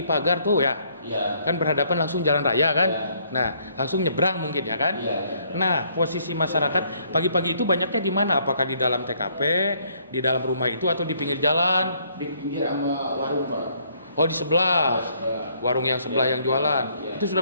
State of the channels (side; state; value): both; inverted; correlation -0.66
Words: pagar tuh ya, Iya. kan berhadapan langsung jalan raya kan, Ya. nah langsung nyebrang mungkin ya kan, Iya. nah posisi masyarakat pagi-pagi itu banyaknya di mana? Apakah di dalam TKP, di dalam rumah itu atau di pinggir jalan? Di pinggir sama warung Pak. Oh di sebelah, warung yang sebelah Ya. yang jualan, Ya. itu